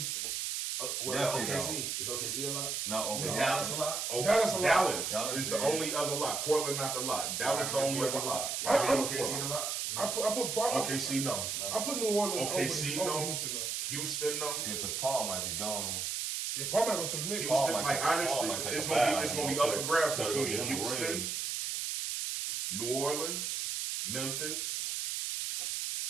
What OKC? Is OKC a lock? No, Is okay. Dallas a lock? Oh, Dallas a lot. Dallas is the only other lot. Portland not the lot. Dallas the only other lot. Y'all think OKC a lock? I put OKC no. I put New Orleans OKC over no. Houston though. Houston no. Yeah, because Paul might be gone. Yeah, Paul might go to the Knicks. Houston, might like take- Paul honestly, might take it's a gonna bow. be up for grabs Try to between get him a Houston, ring. New Orleans, Memphis,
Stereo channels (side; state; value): right; noise; hiss, 2 dB below the sound